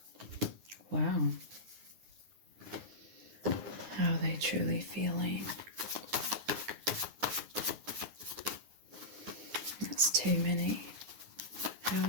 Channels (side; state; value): left; late; 9.5 ms